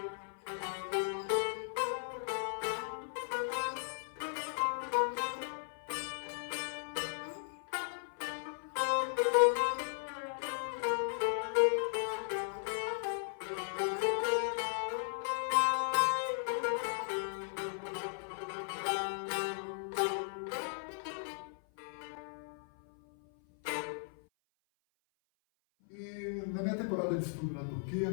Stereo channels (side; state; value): right; silent; 53 dB below the other